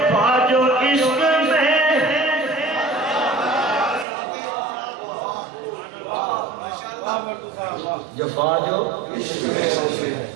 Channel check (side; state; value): left; drops out; at 4.0 s